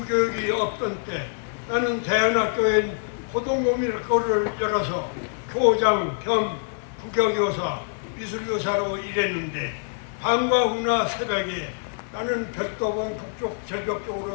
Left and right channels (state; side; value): silent; right; 62 dB below the other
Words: 없던 때 나는 대안학교엔 고등고민학교를 열어서 교장 겸 국어교사, 미술교사로 일했는데 밤과 후나 새벽에 나는 별도봉 북쪽 절벽